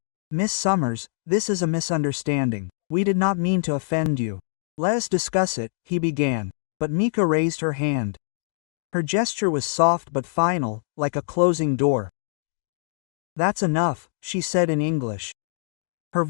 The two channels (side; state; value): right; silent; digital silence